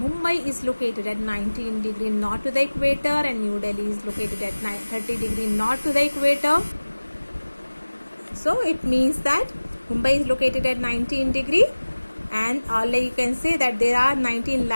is located at 19 degree north to the equator and New Delhi is located at 30 degree north to the equator. So it means that Mumbai is located at 19 degree, and you can say that there are 19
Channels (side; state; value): both; inverted; correlation -1.00